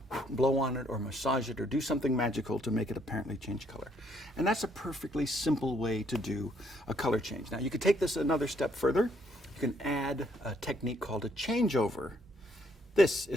blow on it or massage it or do something magical to make it apparently change color. And that's a perfectly simple way to do a color change. Now you could take this another step further. You can add a technique called a changeover. This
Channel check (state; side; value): normal; both; correlation 0.69